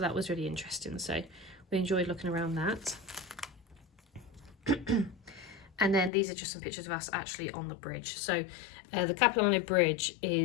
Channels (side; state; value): right; drops out; at 6.1 s